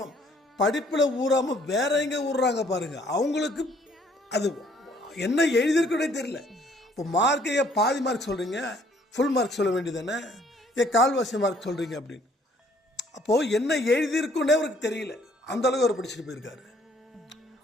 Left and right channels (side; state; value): both; normal; correlation 0.62